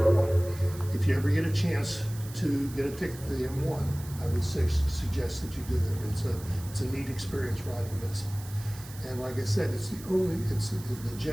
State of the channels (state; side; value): noise; right; hiss, 17 dB below the sound